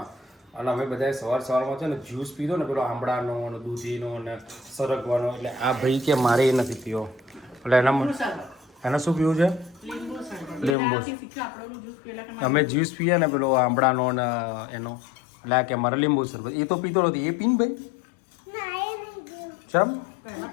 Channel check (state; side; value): drops out; right; at 10.8 s